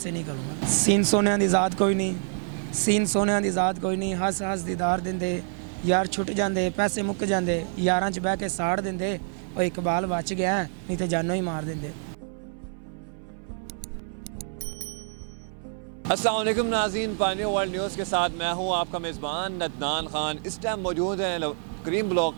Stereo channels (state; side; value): silent; left; 60 dB below the other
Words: नहीं करूँगा। सीन सोने दी ज़ात कोई नहीं, सीन सोने दी ज़ात कोई नहीं, हस हस दीदार दिंदे यार छुट जाते, पैसे मुक जाते, यारां च बह के साड़ देंदे, और इकबाल बच गया नहीं तो जानों ही मार देंदे। अस्सलाम वालेकुम नाज़रीन, पानी वर्ल्ड न्यूज़ के साथ मैं हूँ आपका मेज़बान नदनान खान। इस टाइम मौजूद हैं करीम ब्लॉक